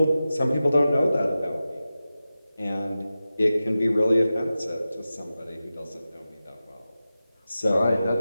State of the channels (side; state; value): both; inverted; correlation -0.94